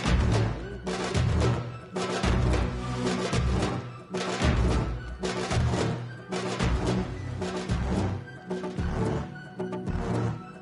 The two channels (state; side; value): identical; both; correlation 1.00